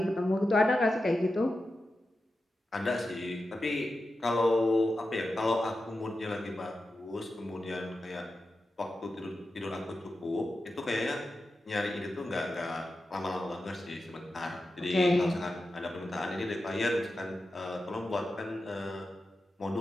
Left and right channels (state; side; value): normal; both; correlation 0.91